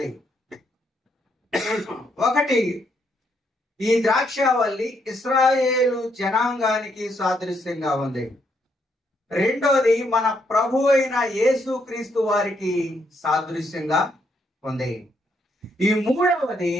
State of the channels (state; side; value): normal; both; correlation 0.75